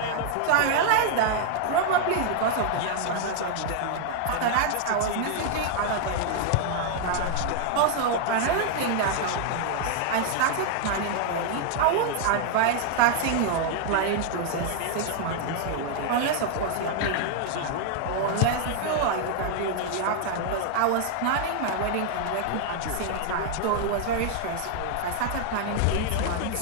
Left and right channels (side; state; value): both; different; correlation 0.00